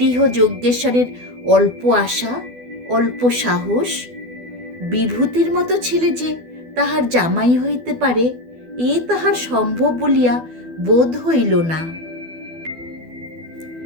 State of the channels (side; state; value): left; late; 12 ms